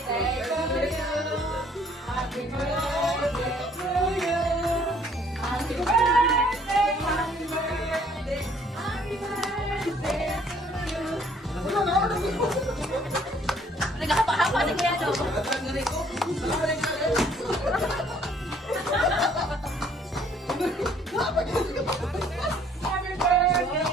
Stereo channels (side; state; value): both; normal; correlation 0.61